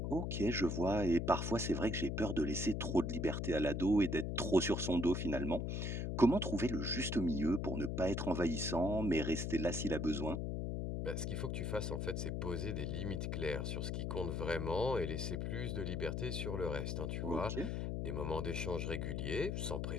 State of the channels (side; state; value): left; noise; hum, 1 dB below the sound